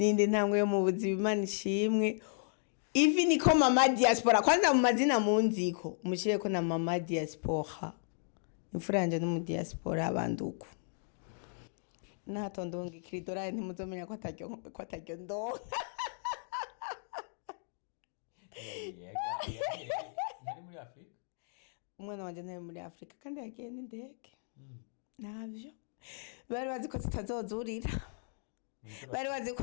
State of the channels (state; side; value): silent; right; digital silence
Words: ntambwe yo mu buzima Imana ishimwe ivi niko mama diaspora kwanza mu mazina munziko mushire ko na mama diaspora imfuranje no mu diaspora abanduku natondonga ikiridora ntimuzomenya ko ataryo ndonka nari muri Afrika umwana wanje nari muri Afrika kandi yagiye n'indege navyo bari bazi ko tutazozurira bari bazi ko